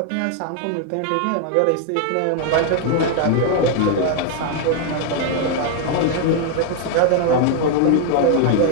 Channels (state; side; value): different; both; correlation 0.00